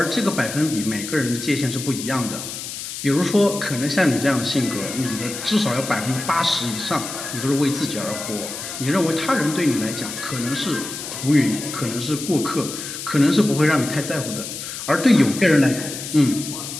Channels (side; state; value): left; noise; hiss, 8 dB below the sound